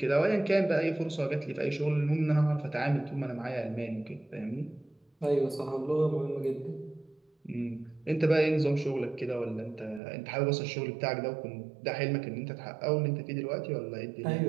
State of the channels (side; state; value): left; drops out; at 10.0 s